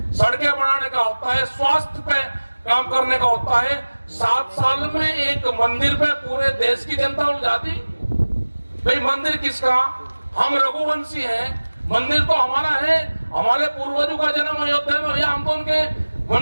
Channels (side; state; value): both; inverted; correlation -1.00